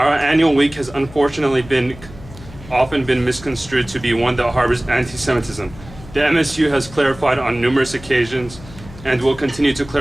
annual week has unfortunately often been misconstrued to be one that harbors anti-Semitism. The MSU has clarified on numerous occasions and will continue to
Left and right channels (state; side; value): noise; left; hum, 18 dB below the sound